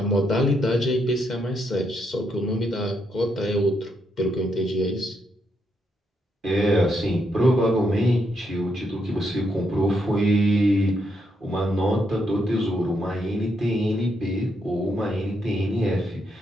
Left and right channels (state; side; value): normal; both; correlation 0.78